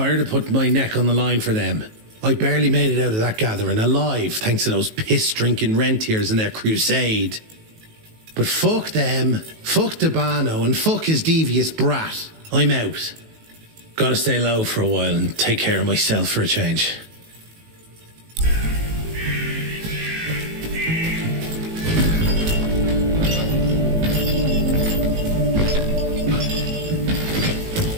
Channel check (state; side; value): late; left; 19 ms